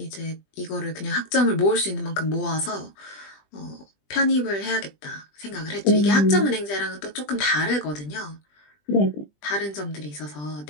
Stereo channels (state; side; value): late; right; 20 ms